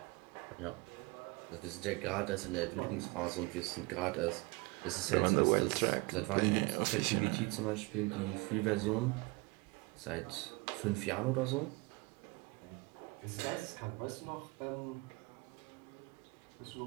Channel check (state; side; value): quieter; left; 25.8 dB